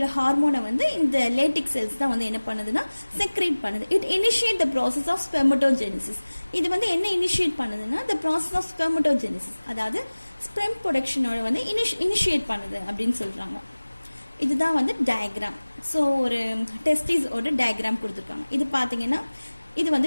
ஹார்மோனை வந்து இந்த லேட்டிக் செல்ஸ் தான் வந்து என்ன பண்ணுதுன்னா செக்ரேட் பண்ணுது. It initiate the process of spermatogenesis. இது வந்து என்ன இனிஷியேட் பண்ணுதுன்னா த ப்ராசஸ் ஆஃப் ஸ்பெர்மட்டோஜெனிசிஸ், அதாவது ஸ்பெர்ம் ப்ரொடக்ஷனோட வந்து இனிஷியேட் பண்ணுது அப்படின்னு சொல்றாங்க. இதுதான் வந்து டயக்ராம். ஸோ ஒரு டெஸ்டிஸோட டயக்ராம் கொடுத்துருக்காங்க. இது பார்த்தீங்கன்னா இது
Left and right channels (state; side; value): inverted; both; correlation -1.00